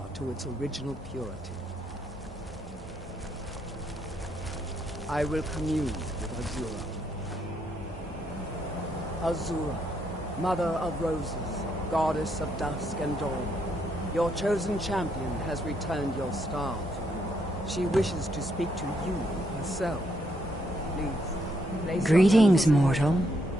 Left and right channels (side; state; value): both; normal; correlation 0.75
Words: to its original purity. I will commune with Azura. Azura, Mother of Roses, Goddess of Dusk and Dawn, your chosen champion has returned your star to you. She wishes to speak to you herself. Please, place Greetings, mortal.